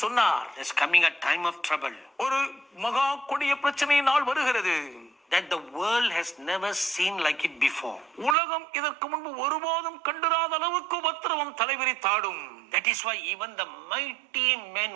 சொன்னார், there's coming a time of trouble ஒரு மகா கொடிய பிரச்சனை நாள் வருகிறது. that the world has never seen like it before. உலகம் இதற்கு முன்பு ஒருபோதும் கண்டிராத அளவுக்கு உபத்திரவம் தலைவிரித்தாடும். That is why even the mighty men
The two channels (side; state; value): left; drops out; at 8.3 s